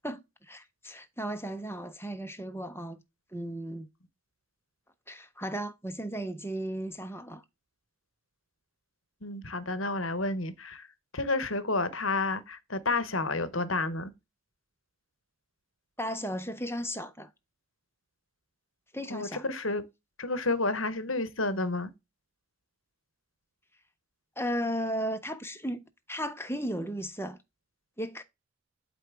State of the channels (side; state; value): both; normal; correlation 0.16